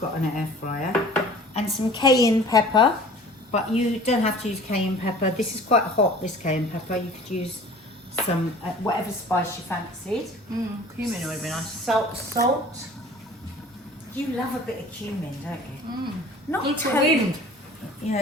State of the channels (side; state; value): both; normal; correlation 0.46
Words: got an air fryer. And some cayenne pepper, but you don't have to use cayenne pepper. This is quite hot, this cayenne pepper. You could use some, whatever spice you fancied. Cumin would be nice. Salt. You love a bit of cumin, don't you? Not It's for totally. wind. Yeah,